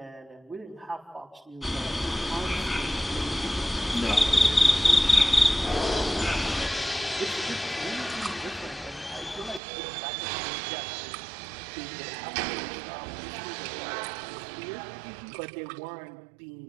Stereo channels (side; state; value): left; drops out; at 9.6 s